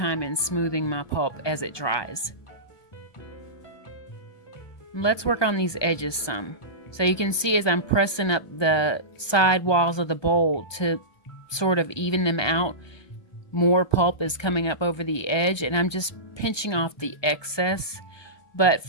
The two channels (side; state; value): right; late; 1.2 ms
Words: in smoothing my pulp as it dries. Let's work on these edges some. So you can see as I'm pressing up the side walls of the bowl to sort of even them out, more pulp is coming up over the edge, and I'm just pinching off the excess. But